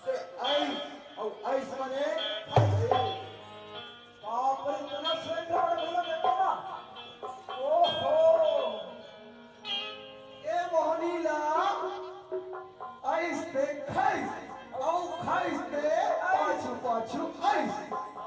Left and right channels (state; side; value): identical; both; correlation 1.00